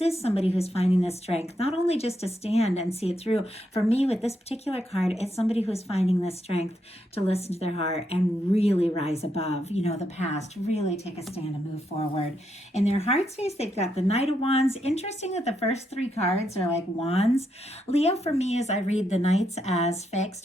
somebody who's finding the strength, not only just to stand and see it through. For me, with this particular card, it's somebody who's finding the strength to listen to their heart and really rise above, the past, really take a stand and move forward. In their heart space, they've got the Knight of Wands. Interesting that the first 3 cards are like wands. Leo, for me, as I read the Knights as fixed.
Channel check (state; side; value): normal; both; correlation 0.80